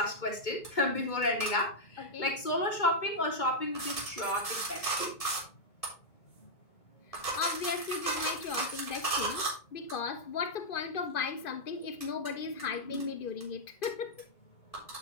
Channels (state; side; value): late; right; 1.7 ms